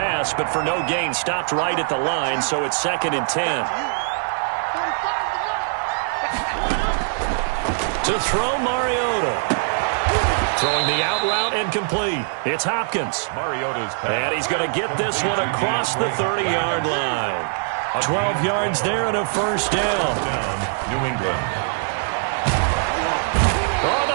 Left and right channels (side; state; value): left; silent; 64 dB below the other